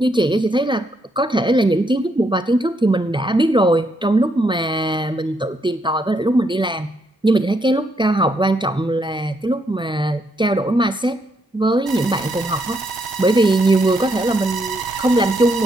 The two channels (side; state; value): both; normal; correlation 0.76